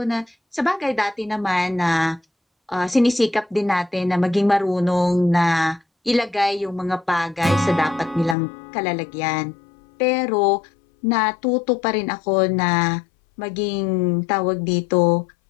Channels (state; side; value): drops out; right; at 8.3 s